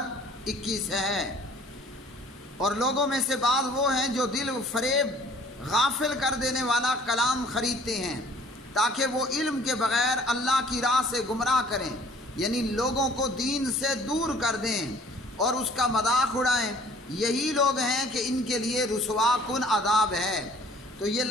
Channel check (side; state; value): both; normal; correlation 0.53